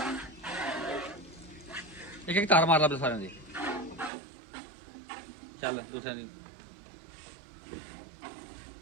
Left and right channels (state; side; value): drops out; left; at 4.1 s